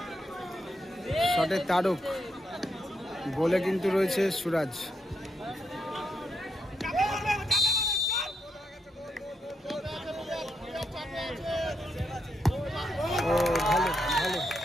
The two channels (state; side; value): normal; both; correlation 0.81